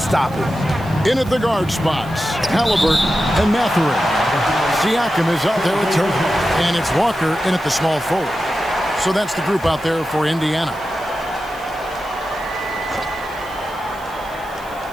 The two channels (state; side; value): noise; right; hiss, 23 dB below the sound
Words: it. In at the guard spots, Halliburton and Mathurin. Siakam is out there with Turner, and it's Walker in at the small forward. So that's the group out there for Indiana.